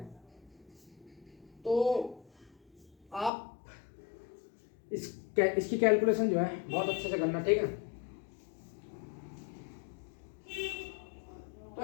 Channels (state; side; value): drops out; right; at 3.3 s